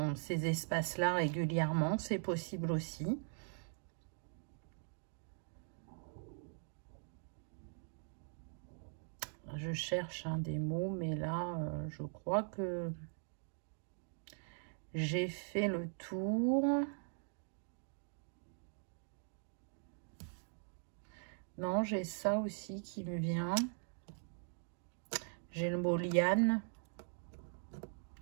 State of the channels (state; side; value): silent; left; digital silence